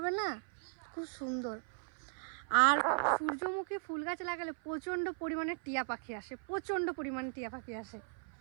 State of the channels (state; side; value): silent; left; 53 dB below the other